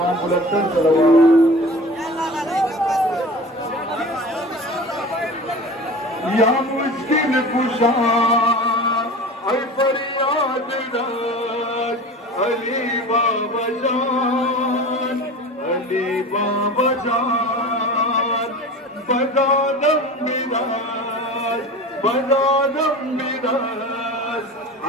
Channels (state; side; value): normal; both; correlation 0.36